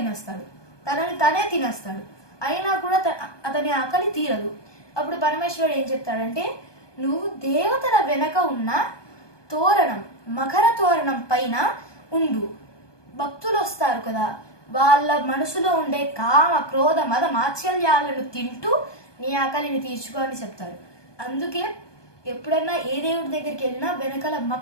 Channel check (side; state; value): right; late; 1.2 ms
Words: తనని తనే తినేస్తాడు. అయినా కూడా అతని ఆకలి తీరదు. అప్పుడు పరమేశ్వరుడు ఏం చెప్తాడంటే, నువ్వు దేవతల వెనక ఉన్న తోరణం, మకర తోరణం పైన ఉండు. భక్తులు వస్తారు కదా, వాళ్ళ మనసులో ఉండే కామ క్రోధ మద మాత్సల్యాలను తింటూ నీ ఆకలిని తీర్చుకో అని చెప్తాడు. అందుకే ఎప్పుడన్నా ఏ దేవుడి దగ్గరికి వెళ్ళినా వెనకాల